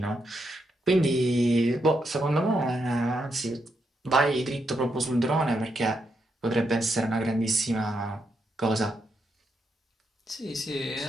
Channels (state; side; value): normal; both; correlation 0.81